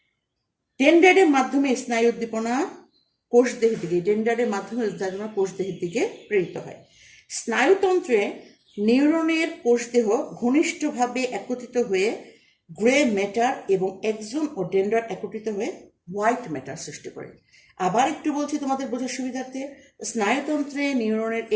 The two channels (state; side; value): identical; both; correlation 1.00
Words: ডেনড্রাইটের মাধ্যমে স্নায়ু উদ্দীপনা কোষদেহের দিকে প্রেরিত হয়। স্নায়ুতন্ত্রে নিউরনের কোষদেহ ঘনিষ্ঠভাবে একত্রিত হয়ে গ্রে ম্যাটার এবং এক্সন ও ডেনড্রাইট একত্রিত হয়ে হোয়াইট ম্যাটার সৃষ্টি করে। আবার একটু বলছি তোমাদের বোঝার সুবিধার্থে, স্নায়ুতন্ত্রে নিউরনের